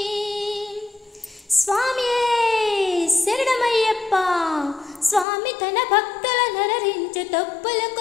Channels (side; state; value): right; drops out; at 5.2 s